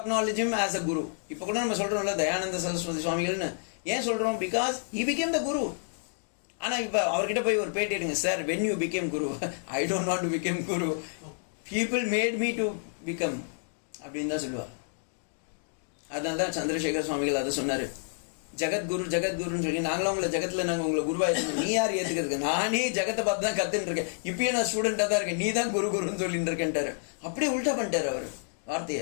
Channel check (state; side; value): silent; right; digital silence